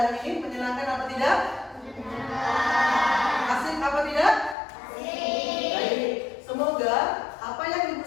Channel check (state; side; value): drops out; right; at 4.5 s